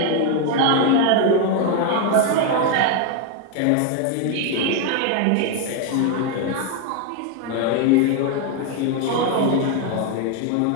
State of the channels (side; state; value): both; different; correlation 0.01